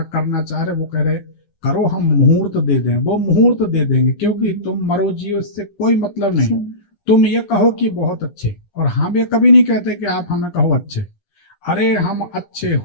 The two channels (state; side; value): late; right; 9.9 ms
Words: करना चाह रहे, वो कह रहे करो, हम मुहूर्त दे दें, वो मुहूर्त दे देंगे, क्योंकि तुम मरो जियो इससे कोई मतलब नहीं। तुम ये कहो कि बहुत अच्छे, और हम ये कभी नहीं कहते कि आप हमें कहो अच्छे। अरे हम अच्छे